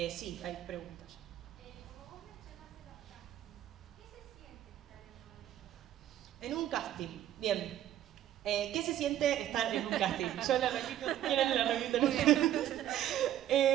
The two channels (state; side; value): quieter; left; 11.9 dB